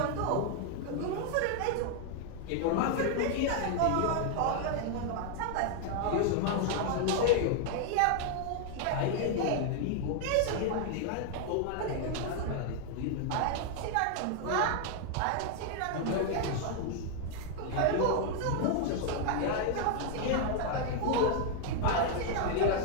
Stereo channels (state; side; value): different; both; correlation 0.00